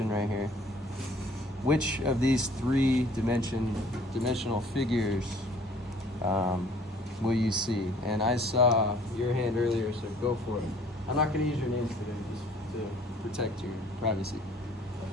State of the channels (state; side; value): normal; both; correlation 0.55